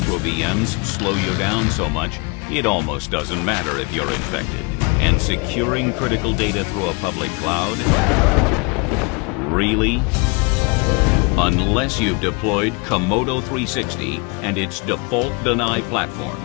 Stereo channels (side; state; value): right; quieter; 30.7 dB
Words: VMs slow you down so much it almost doesn't matter if you're infected. And securing critical data through a public cloud? Really? Unless you've deployed Komodo 360 and its default deny platform,